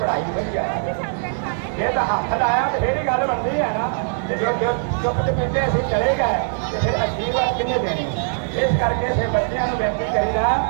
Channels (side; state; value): left; silent; 65 dB below the other